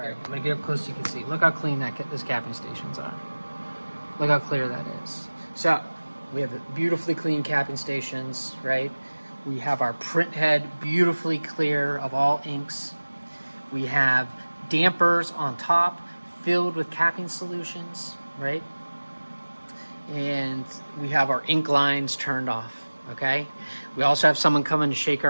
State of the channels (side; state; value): both; inverted; correlation -1.00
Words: get up close so you can see. Look how clean those capping stations are. Look how clear that is. So we have the beautifully clean capping stations, right? We have our print head beautifully clear of all inks. We have dampers on top filled with capping solutions, right? And we have our ink lines turned off, okay? We also have someone coming to shake